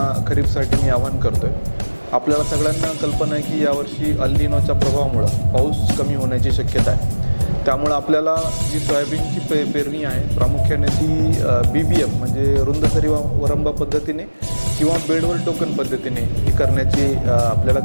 खरीपसाठी मी आवाहन करतोय. आपल्याला सगळ्यांना कल्पना आहे की यावर्षी अल निनोच्या प्रभावामुळे पाऊस कमी होण्याची शक्यता आहे. त्यामुळे आपल्याला जी सोयाबीनची पेरणी आहे प्रामुख्याने ती BBM म्हणजे रुंद सरी वरंबा पद्धतीने किंवा बेडवर टोकन पद्धतीने ही करण्याची आपल्याला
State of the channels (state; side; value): inverted; both; correlation -1.00